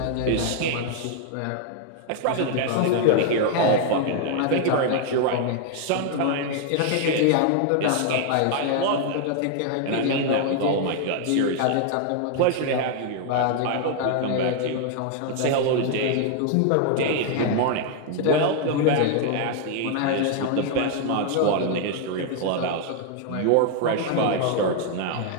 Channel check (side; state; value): both; different; correlation 0.00